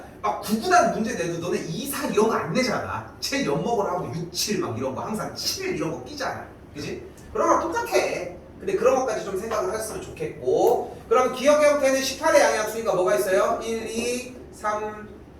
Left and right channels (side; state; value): both; identical; correlation 1.00